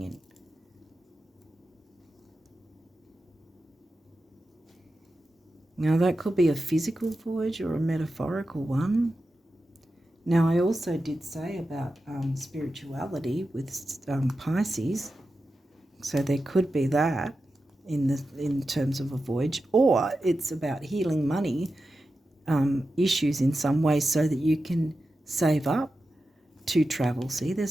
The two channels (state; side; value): normal; both; correlation 0.91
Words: Now, that could be a physical voyage or a metaphorical one. Now, I also did say about spirituality with Pisces. So there could be that in terms of a voyage, or it's about healing money issues in some way so that you can save up to travel. See,